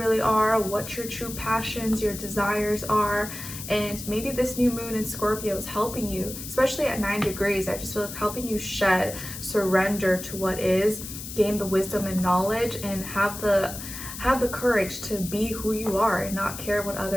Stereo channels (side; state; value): left; noise; hiss, 10 dB below the sound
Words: are, what your true passions, your desires are. And maybe this new moon in Scorpio is helping you, especially at 9 degrees. I just feel it's helping you surrender to what is, gain the wisdom and knowledge, and have the courage to be who you are and not care what